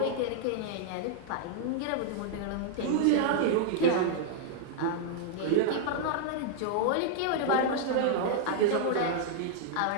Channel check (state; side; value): different; both; correlation -0.01